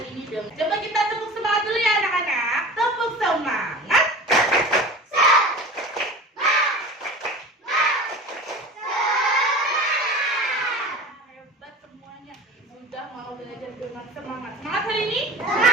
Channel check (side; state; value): both; normal; correlation 0.36